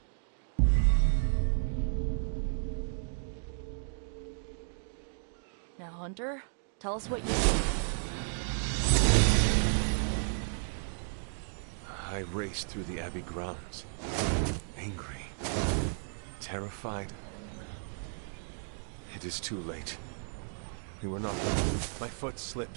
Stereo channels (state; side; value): silent; left; digital silence